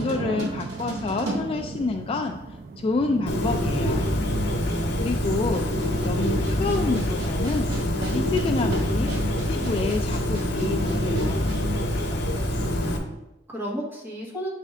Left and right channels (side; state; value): both; normal; correlation 0.65